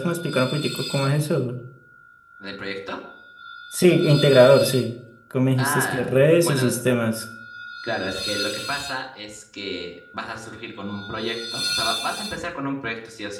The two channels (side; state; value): both; identical; correlation 1.00